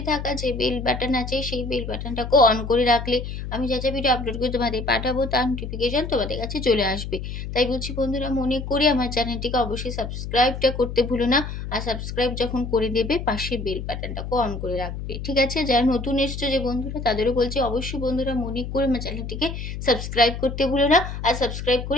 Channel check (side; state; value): left; noise; hum, 7 dB below the sound